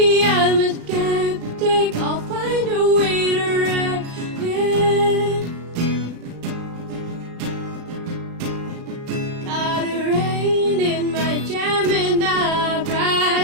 I'm a skeptic. I'll find a way to wreck it. Got a rain in my Gemini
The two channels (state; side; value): late; left; 35 ms